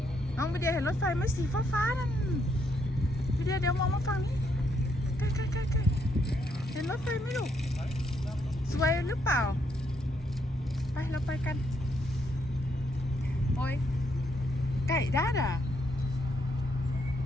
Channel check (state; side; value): normal; both; correlation 0.75